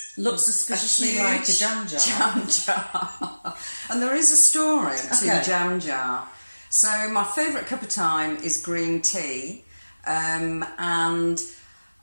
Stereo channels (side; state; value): both; inverted; correlation -1.00